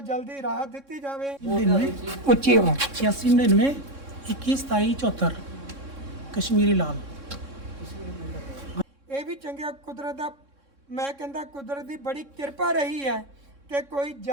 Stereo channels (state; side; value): late; left; 3.6 ms